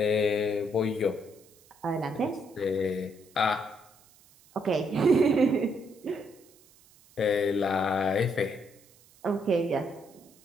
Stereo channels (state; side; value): noise; right; hiss, 28 dB below the sound